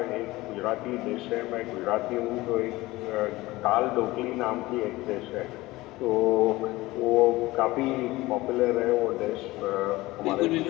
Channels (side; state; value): right; quieter; 19.4 dB